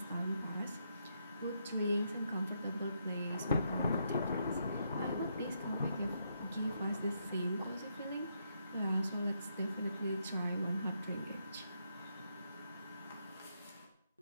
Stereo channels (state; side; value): inverted; both; correlation -0.78